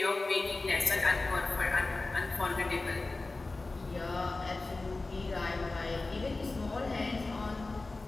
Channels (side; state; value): right; quieter; 3.3 dB